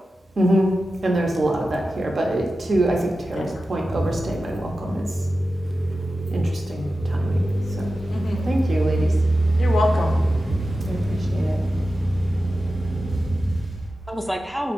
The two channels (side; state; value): both; normal; correlation 0.93